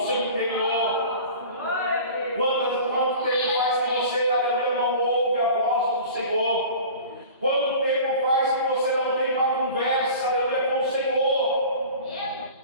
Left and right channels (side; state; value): both; inverted; correlation -0.40